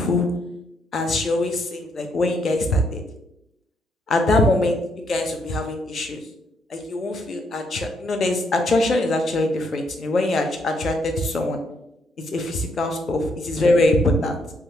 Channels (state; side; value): normal; both; correlation 0.74